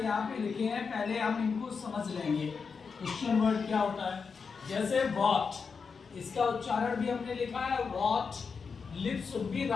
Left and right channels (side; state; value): right; quieter; 5.4 dB